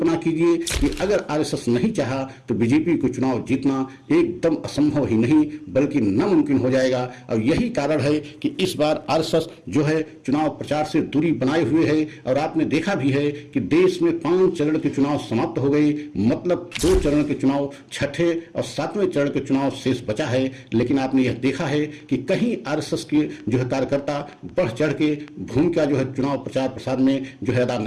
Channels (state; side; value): identical; both; correlation 1.00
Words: कीजिए कि अगर आरएसएस नहीं चाहा तो बीजेपी को चुनाव जीतना एकदम असंभव ही नहीं बल्कि नामुमकिन हो जाएगा। और यही कारण है कि इस बार आरएसएस जो है चुनाव प्रचार से दूरी बनाए हुए है। और आपने देखा भी है कि देश में 5 चरण के चुनाव समाप्त हो गए, मतलब 2 चरण के चुनाव, छठे और 7वें चरण के चुनाव शेष बचा है। लेकिन आपने यह देखा है कि कहीं आरएसएस के जो है कार्यकर्ता बढ़ चढ़ के भूमिका जो है चुनाव प्रचार प्रसार में जो है अदा